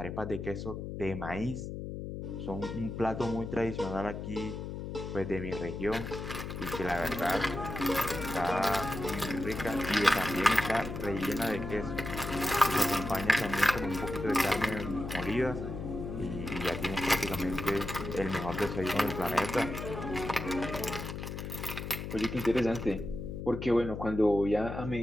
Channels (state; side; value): noise; left; hum, 7 dB below the sound